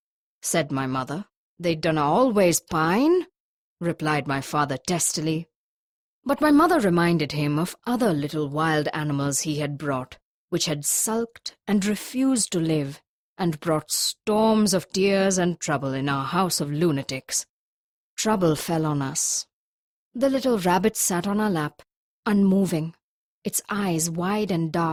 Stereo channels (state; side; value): identical; both; correlation 1.00